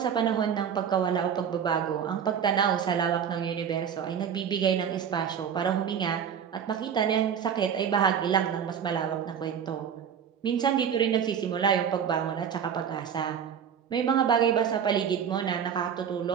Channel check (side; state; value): left; quieter; 7.9 dB